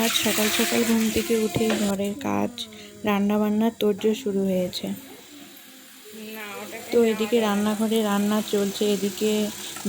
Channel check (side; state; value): both; identical; correlation 1.00